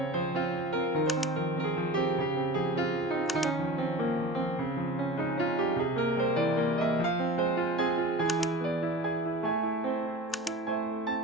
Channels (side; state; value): both; normal; correlation 0.35